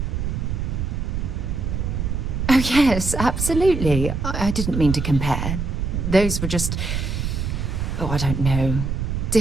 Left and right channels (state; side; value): noise; right; rumble, 2 dB below the sound